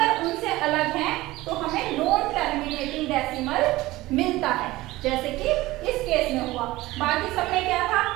उनसे अलग हैं तो हमें नॉन टर्मिनेटिंग डेसिमल मिलता है, जैसे कि इस केस में हुआ। बाकी सब में क्या था,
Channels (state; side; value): quieter; left; 18.4 dB